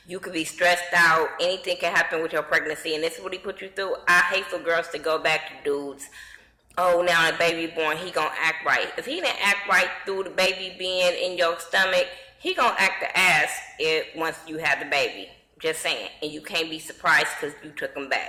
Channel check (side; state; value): both; identical; correlation 1.00